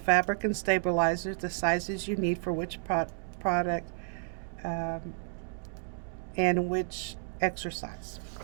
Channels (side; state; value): left; silent; 57 dB below the other